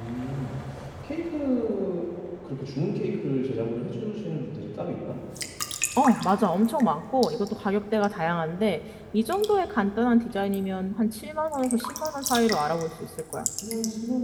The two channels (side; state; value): both; identical; correlation 1.00